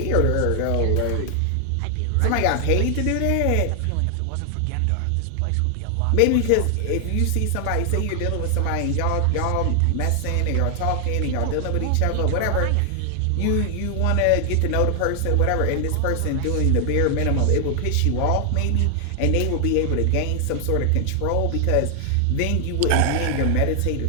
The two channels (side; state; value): both; different; correlation 0.00